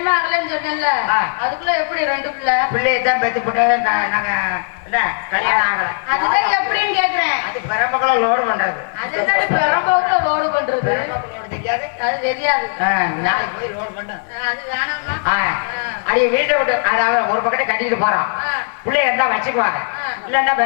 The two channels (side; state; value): right; silent; 55 dB below the other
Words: ஆகலன்னு சொன்னேன்ல, அதுக்குள்ள எப்படி 2 பிள்ளை? பிள்ளையை தான் பெத்து போட்டு நாங்க என்ன கல்யாணம் ஆகல. அதுதான் எப்படின்னு கேக்குறேன். அது பெரம்பக்குள்ள லோடு பண்றது. அதுதான் பெரம்பக்குள்ள லோடு பண்றது. பெரம்பக்குள்ள தெரியாது, அது தெரியாது. நாளைக்கு போய் லோடு பண்ண. அது வேணாமா? அடி வீட்டை விட்டு அதாவது ஒரு பக்கத்தை கட்டிட்டு போறோம். பிள்ளைய இருந்தா வச்சுக்குவாங்க, இல்லன்னா